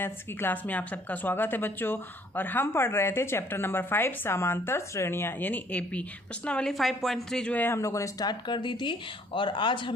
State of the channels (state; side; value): normal; both; correlation 0.61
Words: की क्लास में आप सबका स्वागत है बच्चों। और हम पढ़ रहे थे चैप्टर नंबर 5 समांतर श्रेणियाँ यानी एपी। प्रश्नावली 5.3 जो है हम लोगों ने स्टार्ट कर दी थी और आज